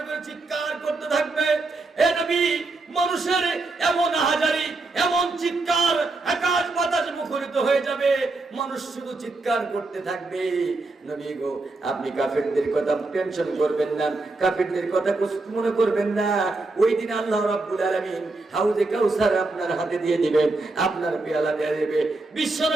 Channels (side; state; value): left; quieter; 3.3 dB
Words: করে চিৎকার করতে থাকবে। এ নবী, মানুষের এমন হাজারি, এমন চিৎকার, আকাশ বাতাস মুখরিত হয়ে যাবে, মানুষ শুধু চিৎকার করতে থাকবে। নবী গো, আপনি কাফেরদের কথা টেনশন করবেন না, কাফেরদের কথা কষ্ট মনে করবেন না। ওই দিন আল্লাহ রাব্বুল আলামিন হাউজে কাউসার আপনার হাতে দিয়ে দিবেন, আপনার পেয়ালা দিয়ে দিবে।